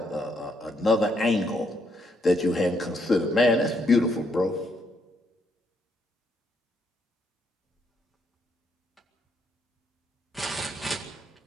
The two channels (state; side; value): normal; both; correlation 0.74